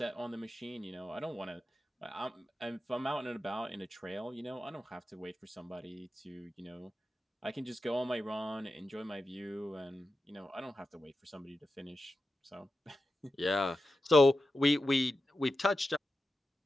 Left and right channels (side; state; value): both; normal; correlation 0.91